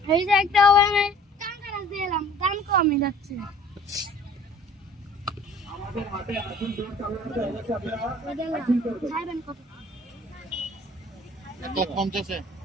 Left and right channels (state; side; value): normal; both; correlation 0.50